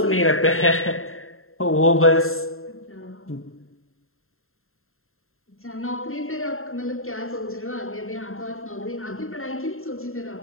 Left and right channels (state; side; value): late; right; 0.61 ms